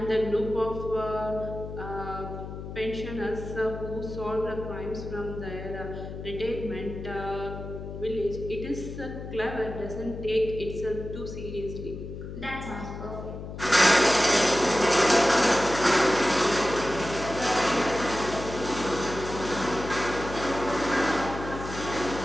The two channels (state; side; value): noise; left; hum, 9 dB below the sound